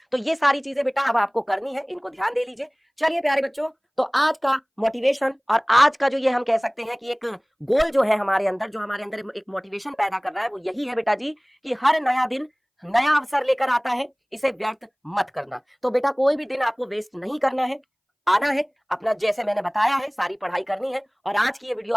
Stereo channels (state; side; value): identical; both; correlation 1.00